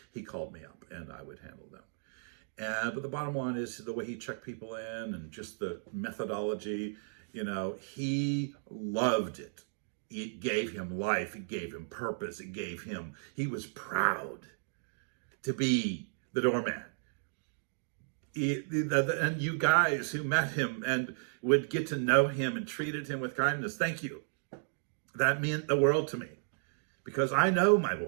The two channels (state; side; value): silent; left; digital silence